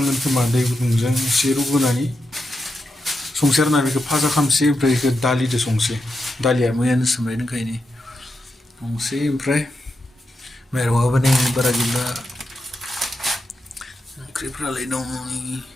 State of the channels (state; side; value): normal; both; correlation 0.86